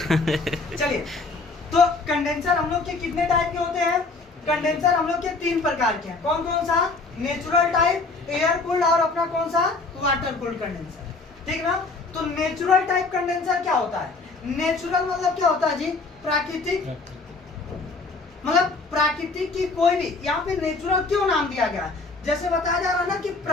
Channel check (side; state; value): right; quieter; 3.7 dB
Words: चलिए, तो कंडेंसर हम लोग के कितने टाइप के होते हैं? कंडेंसर हम लोग के 3 प्रकार के हैं। कौन कौन सा? नेचुरल टाइप, एयर कूल्ड और अपना कौन सा? Water cooled condenser. ठीक ना? तो नेचुरल टाइप कंडेंसर क्या होता है? नेचुरल मतलब क्या होता है जी? प्राकृतिक, मतलब प्राकृतिक की कोई भी, यहाँ पे नेचुरल क्यों नाम दिया गया है? जैसे बताया जा रहा है ना कि